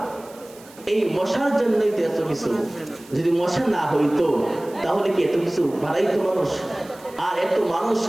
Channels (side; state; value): right; noise; hiss, 23 dB below the sound